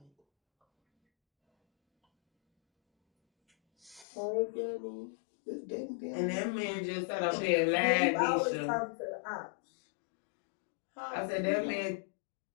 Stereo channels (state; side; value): drops out; right; at 4.0 s